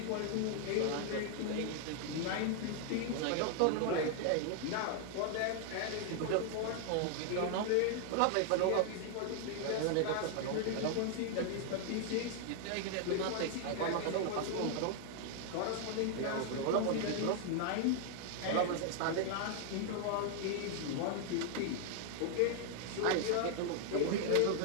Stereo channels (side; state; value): both; different; correlation 0.00